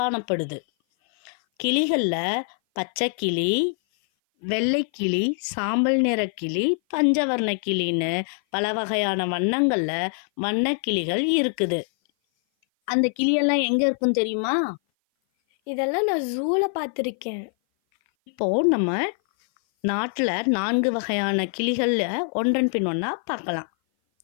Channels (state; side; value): silent; right; 57 dB below the other